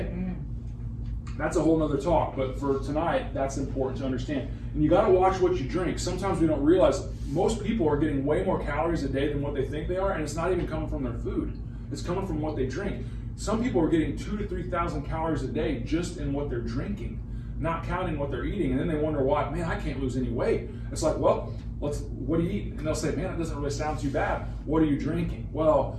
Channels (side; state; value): both; identical; correlation 1.00